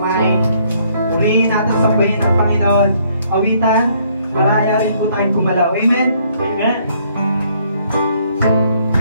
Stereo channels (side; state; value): both; inverted; correlation -0.66